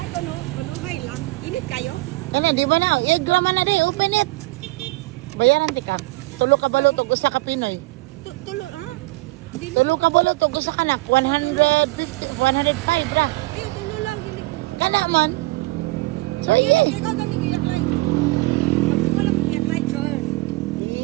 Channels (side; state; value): left; quieter; 22.0 dB